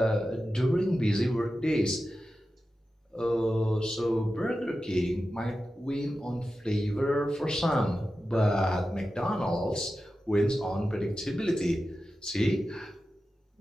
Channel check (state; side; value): normal; both; correlation 0.92